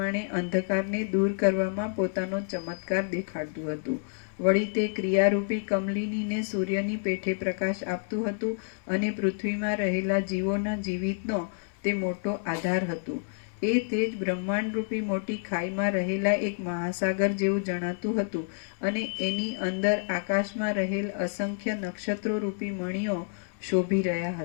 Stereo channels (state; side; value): silent; right; 58 dB below the other